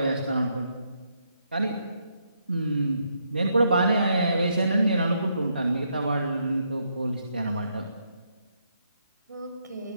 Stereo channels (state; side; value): inverted; both; correlation -0.77